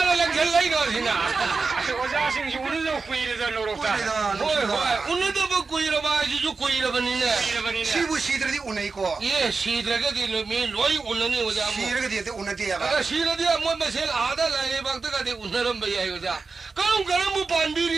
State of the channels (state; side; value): quieter; left; 4.3 dB